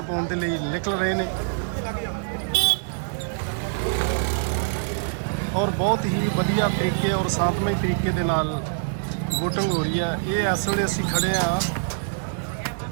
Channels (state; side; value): silent; left; digital silence